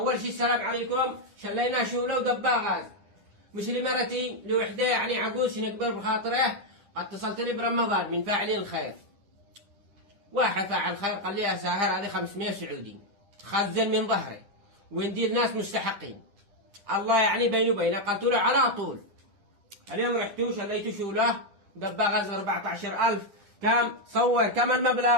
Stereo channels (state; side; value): late; left; 10 ms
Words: شيء السلام عليكم. شلينا شوله ودبا غاز، مش لمرتي لوحده يعني عجوز نكبر بخاطره. اتصلت لي برمضان من فاعلين الخير، واحد فاعل خير قال لي يا ساهر هذه 500 سعودي خزن من ظهري وندير ناس مستحقين، الله يعني بيني وبينه. قلت له على طول. اليوم رحتوا شليتوا شوله دبا غاز 14,000. كم صور كم